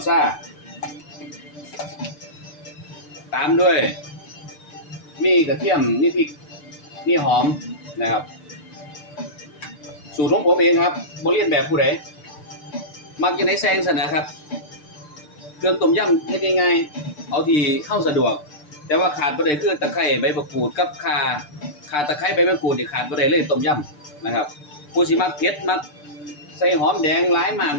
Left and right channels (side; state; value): right; late; 6.7 ms